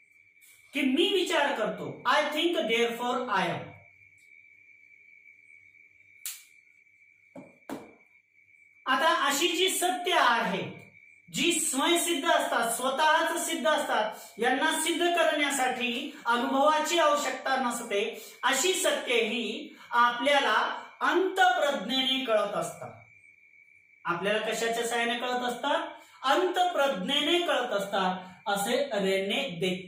की मी विचार करतो, I think therefore I am. आता अशी जी सत्य आहे जी स्वयंसिद्ध असतात, स्वतःच सिद्ध असतात, यांना सिद्ध करण्यासाठी अनुभवाची आवश्यकता नसते, अशी सत्य ही आपल्याला अंतःप्रज्ञेने कळत असतात. आपल्याला कशाच्या सहाय्याने कळत असतात? अंतःप्रज्ञेने कळत असतात, असे रेने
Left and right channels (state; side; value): identical; both; correlation 1.00